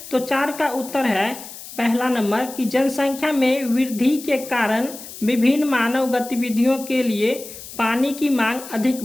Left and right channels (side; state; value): left; noise; hiss, 14 dB below the sound